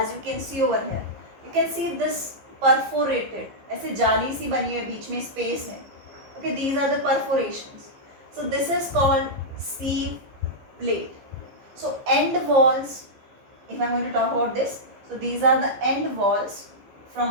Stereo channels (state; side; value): late; left; 15 ms